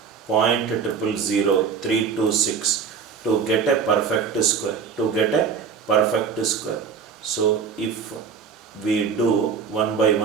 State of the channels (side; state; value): left; quieter; 6.3 dB